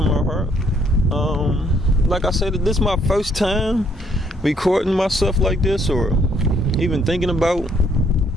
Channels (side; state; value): both; normal; correlation 0.68